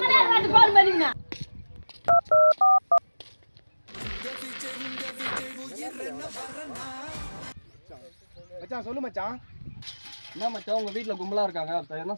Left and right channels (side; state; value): both; inverted; correlation -1.00